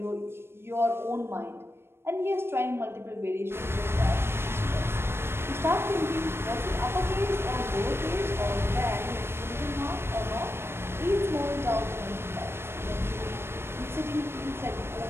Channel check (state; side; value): late; left; 0.12 ms